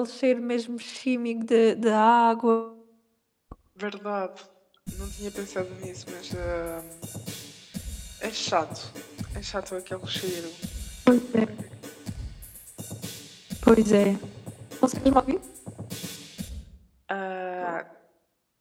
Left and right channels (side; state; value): both; identical; correlation 1.00